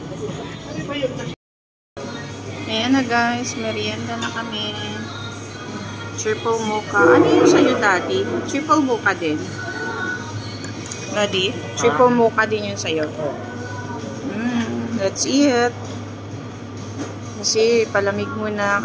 Ayan na guys, merienda na kami. Triple mocha. Ano yung sa'yo, Daddy? Triple mocha din. Daddy? Triple mocha din yung sa'yo. Let's eat. Kasi palamig muna,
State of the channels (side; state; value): both; identical; correlation 1.00